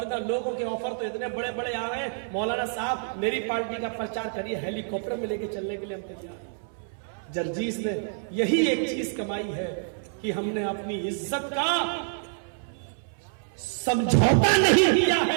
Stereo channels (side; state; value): left; silent; 60 dB below the other